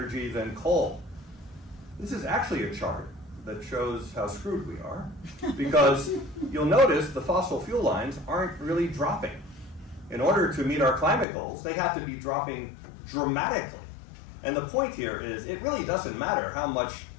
than coal. This is actually a chart that shows how screwed we are, because you'll notice the fossil fuel lines aren't really dropping. In order to meet our climate goals, they have to be dropping dramatically. And the point here is it really doesn't matter how much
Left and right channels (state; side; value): drops out; right; at 11.2 s